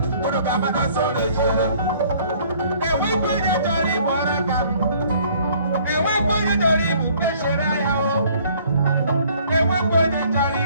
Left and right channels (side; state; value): both; inverted; correlation -0.57